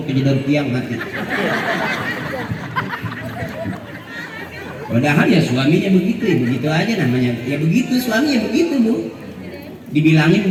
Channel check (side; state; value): both; identical; correlation 1.00